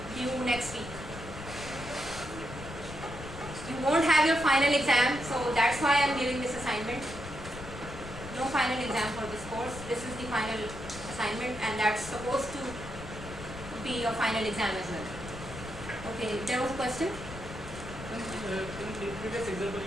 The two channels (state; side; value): noise; left; rumble, 12 dB below the sound